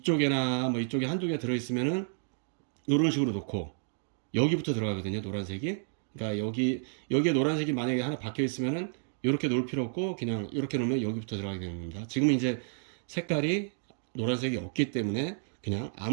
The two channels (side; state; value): left; silent; digital silence